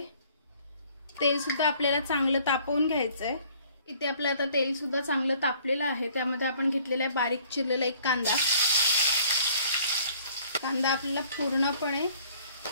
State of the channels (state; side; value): inverted; both; correlation -0.57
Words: तेल सुद्धा आपल्याला चांगलं तापवून घ्यायचं आहे। इथे आपलं आता तेल सुद्धा चांगलं तापलेलं आहे। त्यामध्ये आपण घेतलेला आहे बारीक चिरलेला एक कांदा। कांदा आपल्याला पूर्णपणे